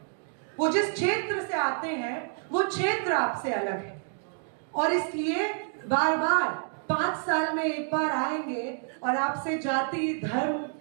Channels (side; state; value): left; silent; 59 dB below the other